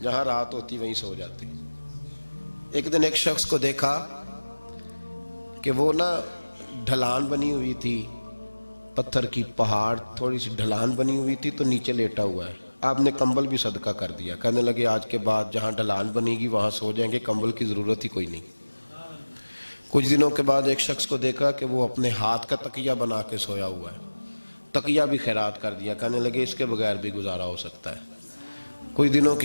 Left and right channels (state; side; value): inverted; both; correlation -1.00